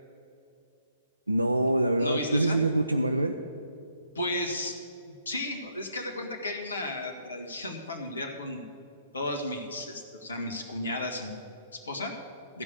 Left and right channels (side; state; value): both; inverted; correlation -0.74